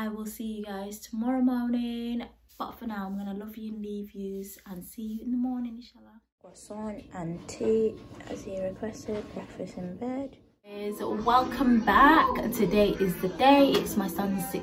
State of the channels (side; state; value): both; identical; correlation 1.00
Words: will see you guys tomorrow morning, but for now I'm gonna love you and leave yous, and see you in the morning, inshallah. Croissant and tea as he requested, breakfast in bed. Welcome back. Today is the day. It's my son's